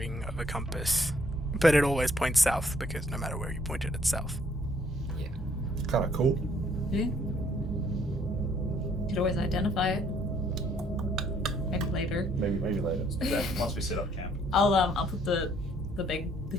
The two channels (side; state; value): both; normal; correlation 0.65